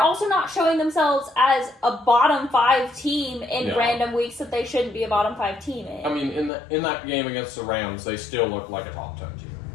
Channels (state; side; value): drops out; right; at 6.5 s